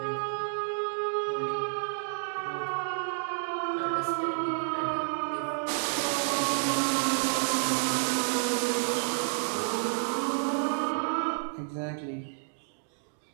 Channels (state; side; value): silent; left; digital silence